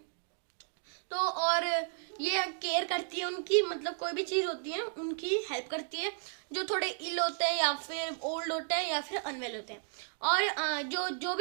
तो और ये केयर करती है उनकी, मतलब कोई भी चीज होती है उनकी हेल्प करती है, जो थोड़े इल होते हैं, या फिर ओल्ड होते हैं, या फिर अनवेल होते हैं। और जो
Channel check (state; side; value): silent; left; digital silence